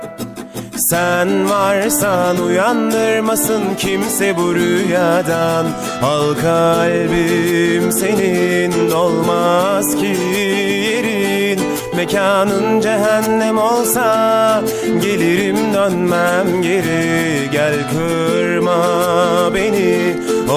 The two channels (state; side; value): identical; both; correlation 1.00